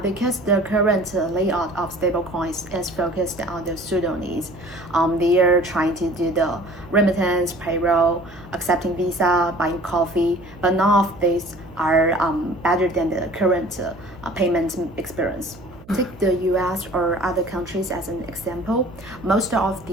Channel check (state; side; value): noise; right; hum, 22 dB below the sound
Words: because the current layout of stablecoins is focused on the pseudo needs. They are trying to do the remittance, payroll, accepting Visa, buying coffee, but none of these are better than the current payment experience. Take the US or other countries as an example. Most of